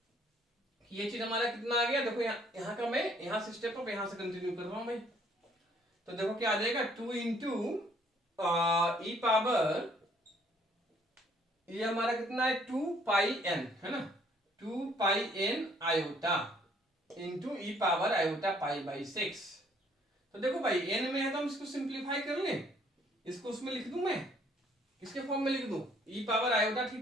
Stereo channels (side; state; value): both; normal; correlation 0.63